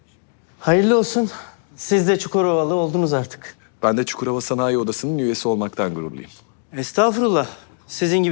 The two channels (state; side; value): silent; right; digital silence